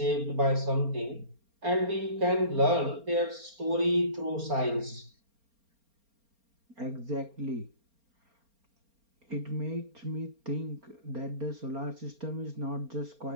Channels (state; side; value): late; left; 4.3 ms